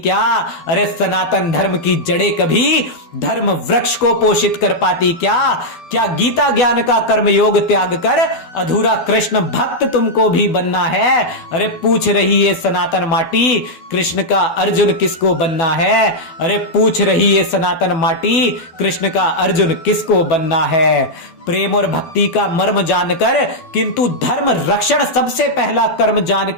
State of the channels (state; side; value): late; right; 12 ms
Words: अरे सनातन धर्म की जड़ें कभी धर्म वृक्ष को पोषित कर पाती क्या। क्या गीता ज्ञान का कर्म योग त्याग कर अधूरा कृष्ण भक्त तुमको भी बनना है। अरे पूछ रही है सनातन माटी, कृष्ण का अर्जुन किसको बनना है। अरे पूछ रही है सनातन माटी, कृष्ण का अर्जुन किसको बनना है। प्रेम और भक्ति का मर्म जानकर, किंतु धर्म रक्षण सबसे पहला कर्म